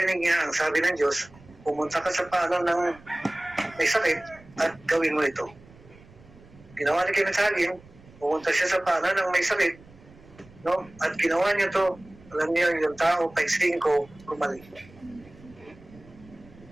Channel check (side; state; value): right; noise; rumble, 24 dB below the sound